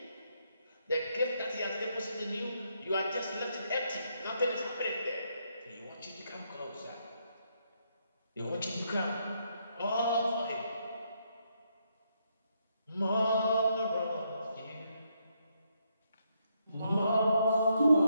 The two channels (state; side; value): inverted; both; correlation -0.76